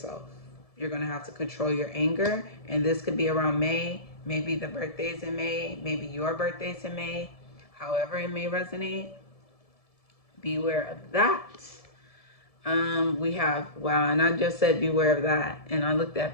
You're going to have to control your anger, and this could be around May. Maybe the birthday's in May, maybe your birthday's in May. However it may resonate, beware of that. We have, wow, and I just said beware of that. And I looked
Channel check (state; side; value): late; right; 1.7 ms